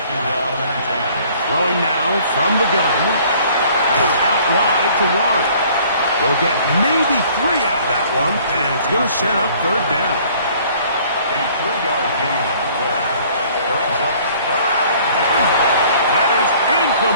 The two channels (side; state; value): both; inverted; correlation -0.55